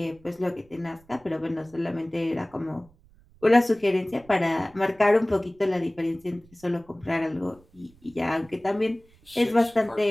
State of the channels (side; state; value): right; noise; rumble, 28 dB below the sound